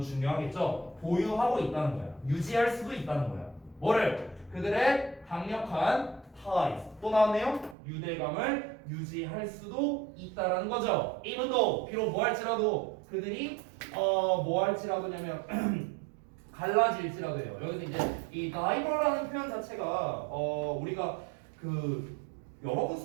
보유하고 있다는 거야. 유지할 수도 있다는 거야. 뭐를? 그들의 강력한 ties, 또 나왔네요. 유대감을 유지할 수도 있다라는 거죠. even though, 비록 뭐 할지라도 그들이 뭐 할지라도냐면 갈라질지라도요. 여기서 이제 이 diver라는 표현 자체가 우리가 그 여러 번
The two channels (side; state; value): left; drops out; at 7.8 s